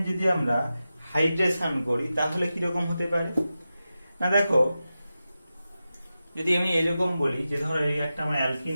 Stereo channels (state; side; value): inverted; both; correlation -0.92